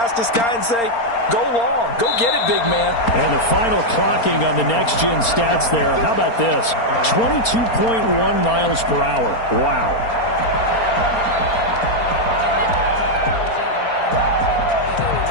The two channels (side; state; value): right; late; 4.3 ms